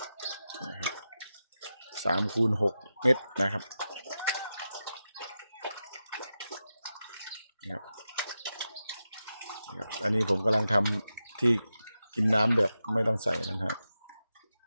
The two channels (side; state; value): both; inverted; correlation -0.90